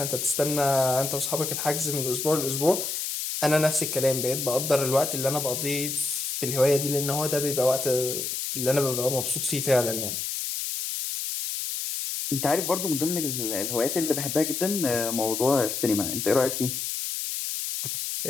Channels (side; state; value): left; noise; hiss, 3 dB below the sound